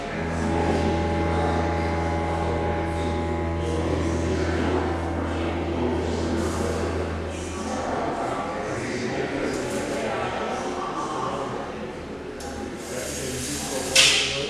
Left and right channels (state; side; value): identical; both; correlation 1.00